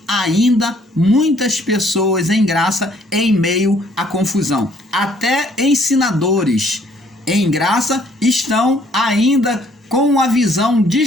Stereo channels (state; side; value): normal; both; correlation 0.63